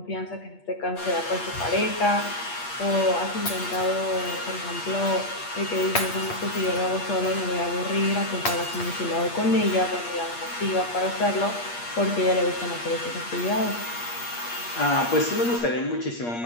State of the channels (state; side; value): late; right; 8.5 ms